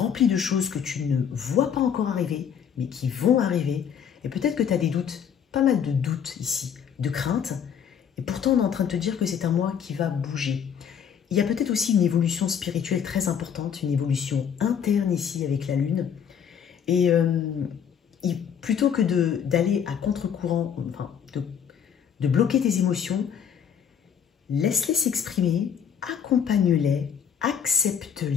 de choses que tu ne vois pas encore arriver, mais qui vont arriver. Et peut-être que tu as des doutes, pas mal de doutes ici, de craintes. Et pourtant, on est en train de te dire que c'est un mois qui va bouger. Il y a peut-être aussi une évolution spirituelle très importante, une évolution interne ici avec la Lune. Et plutôt que d'aller à contre-courant, enfin, de bloquer tes émotions, laisse-les s'exprimer, accompagne-les,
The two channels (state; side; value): quieter; right; 7.9 dB